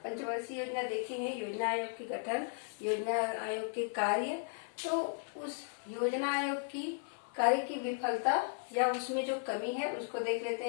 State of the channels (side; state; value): right; silent; 54 dB below the other